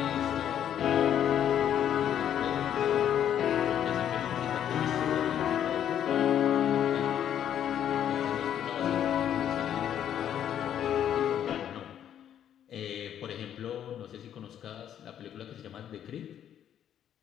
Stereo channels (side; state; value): right; quieter; 9.9 dB